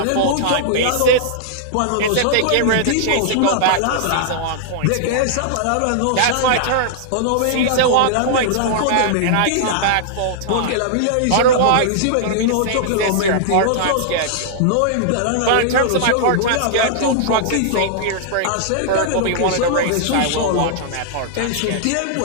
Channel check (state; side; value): different; both; correlation -0.01